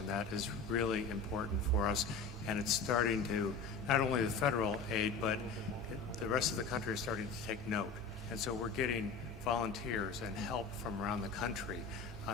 That is really important for us, and it's starting to, not only the federal aid, but the rest of the country is starting to take note. And so we're getting volunteers and help from around the country,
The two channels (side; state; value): right; quieter; 4.4 dB